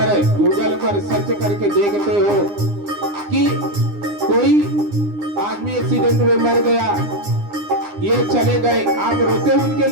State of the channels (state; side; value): late; left; 9.8 ms